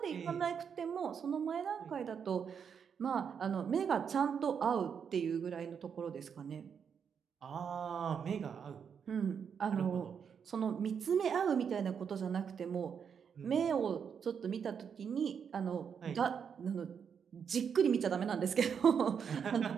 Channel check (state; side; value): quieter; left; 7.1 dB